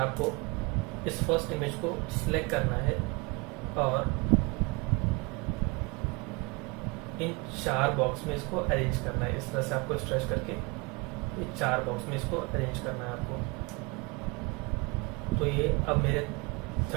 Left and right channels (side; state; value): left; quieter; 27.9 dB